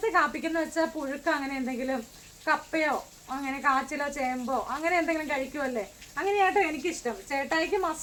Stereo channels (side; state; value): both; identical; correlation 1.00